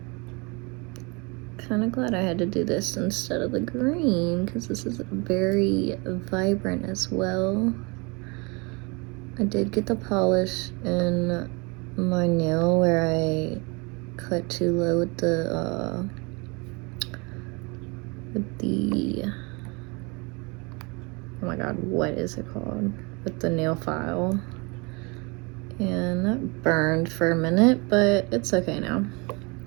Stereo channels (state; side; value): quieter; left; 28.9 dB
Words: Kind of glad I had to do this instead of the green because this is very vibrant as well. I did get the polish in my nail where I cut too low with the oh my god, what is it called? With the nail file. And that burned for a minute, but it's okay now.